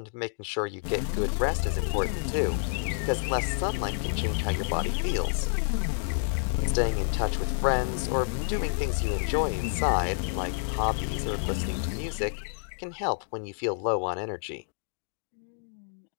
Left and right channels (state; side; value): silent; right; digital silence